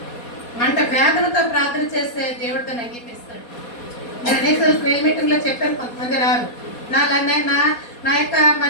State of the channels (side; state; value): right; late; 4.2 ms